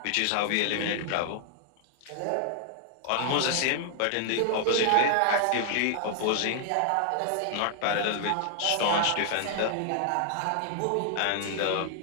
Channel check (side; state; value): both; different; correlation 0.00